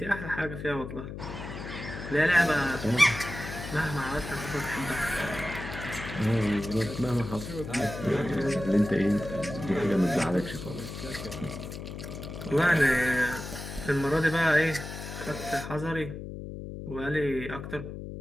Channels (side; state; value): left; noise; hum, 9 dB below the sound